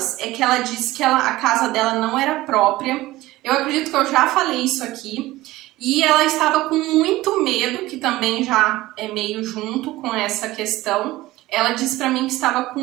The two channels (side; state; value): left; quieter; 17.7 dB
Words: é que ela disse que a casa dela não era própria. Eu acredito que eu já falei isso aqui. E ela estava com muito medo, que também já é meio junto com essa questão. Ela disse para mim que estava com